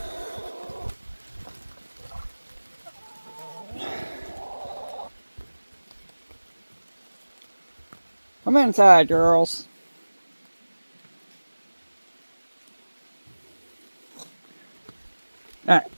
Come inside, girls. All right.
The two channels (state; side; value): inverted; both; correlation -1.00